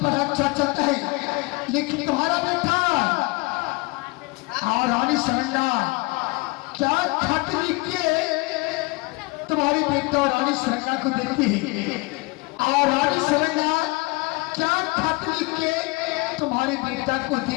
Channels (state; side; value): quieter; right; 25.5 dB